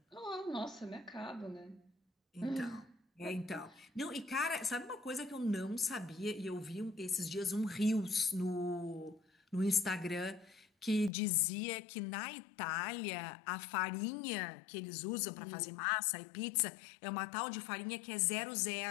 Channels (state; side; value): drops out; right; at 11.1 s